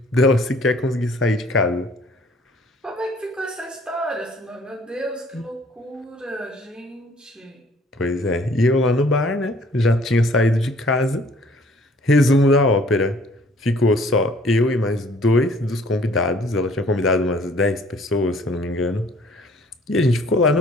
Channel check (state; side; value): normal; both; correlation 0.57